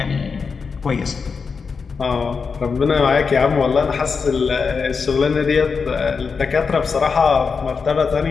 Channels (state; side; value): quieter; right; 5.3 dB